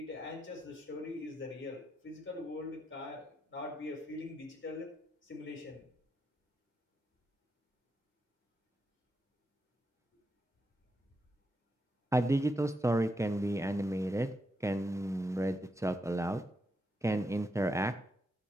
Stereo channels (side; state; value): both; normal; correlation 0.83